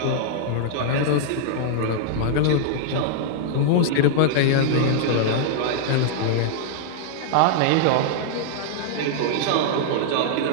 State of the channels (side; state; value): both; different; correlation -0.01